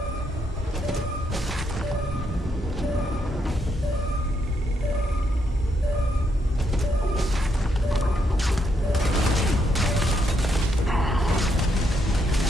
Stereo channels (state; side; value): normal; both; correlation 0.77